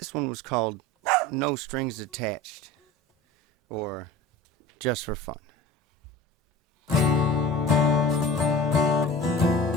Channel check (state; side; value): normal; both; correlation 0.38